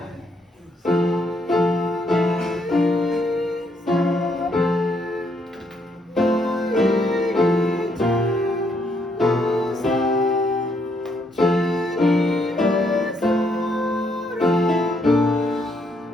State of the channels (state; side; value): normal; both; correlation 0.74